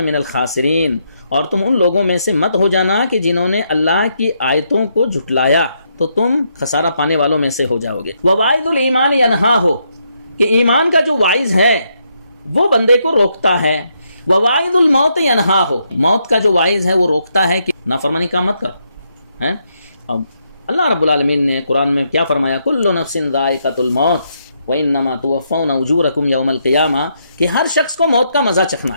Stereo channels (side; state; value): both; inverted; correlation -0.78